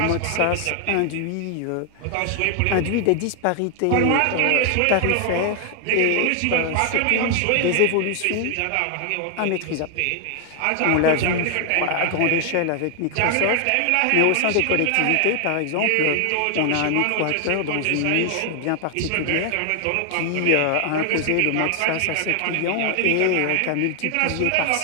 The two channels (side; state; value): both; different; correlation 0.00